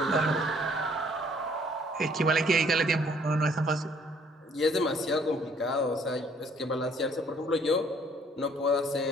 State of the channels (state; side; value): normal; both; correlation 0.61